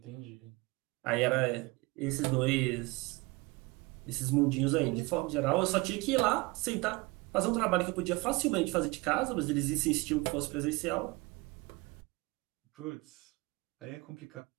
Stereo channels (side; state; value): left; quieter; 24.5 dB